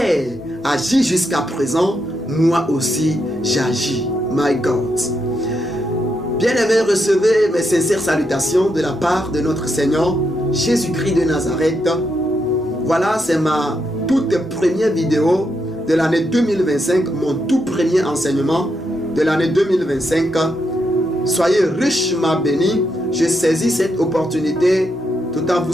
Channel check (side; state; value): both; normal; correlation 0.81